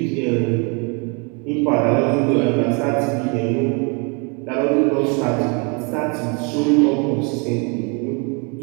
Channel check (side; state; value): left; quieter; 33.7 dB